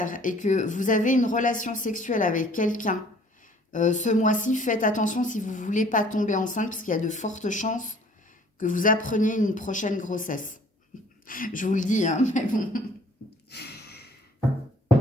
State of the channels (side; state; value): both; normal; correlation 0.55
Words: et que vous avez une relation sexuelle avec quelqu'un, ce mois-ci, faites attention si vous ne voulez pas tomber enceinte, parce qu'il y a de fortes chances que vous appreniez une prochaine grossesse. Je vous le dis, hein, mais bon.